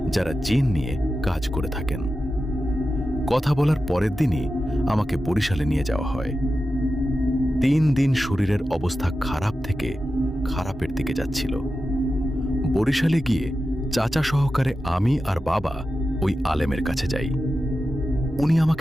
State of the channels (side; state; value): both; normal; correlation 0.92